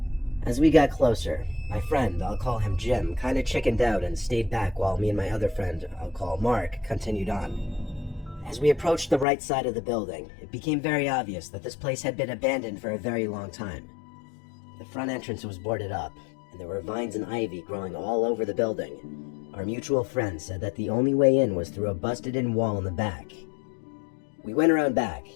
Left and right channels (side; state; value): right; drops out; at 9.2 s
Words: As we got closer, my friend, I'll call him Jim, kinda chickened out and stayed back while me and my other friend, I'll call Mark, continued on. As we approached the right side of the building, it became very obvious that this place had been abandoned for a very long time. The front entrance was boarded up, and there were vines and ivy growing all over the building. Our mutual friend said that the only way in was through a busted-in wall in the back. We went around back,